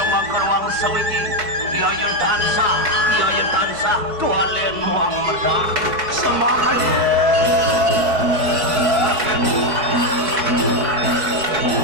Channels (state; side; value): late; left; 4.6 ms